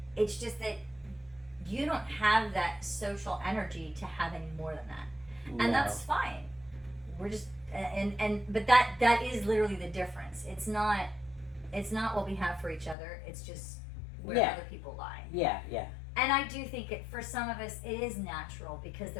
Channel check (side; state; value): right; drops out; at 13.0 s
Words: It's just that you don't have that social energy to have any more than that. And No. that's fine. We're just but that is literally the difference. It's not what we have for each other. It's just where Yeah. other people lie. Yeah. Yeah. And I do think for some of us it is natural because